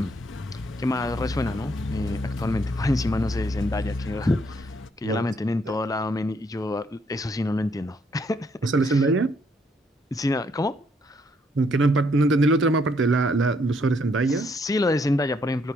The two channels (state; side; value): normal; both; correlation 0.71